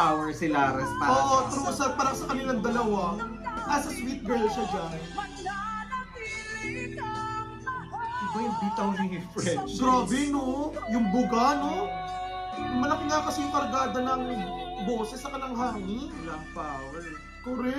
si Laras para Oo, true. Parang sa kanilang dalawa. As a sweet girl siya dyan. Iba yung bitaw ni Frenchie. Grabe, no? Yung buga, no? Malaki nga kasi yung kargada ng boses sa kanang hangin. Kulang power.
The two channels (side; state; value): both; identical; correlation 1.00